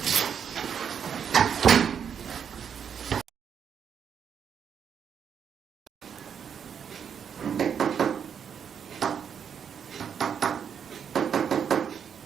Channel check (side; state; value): left; quieter; 7.6 dB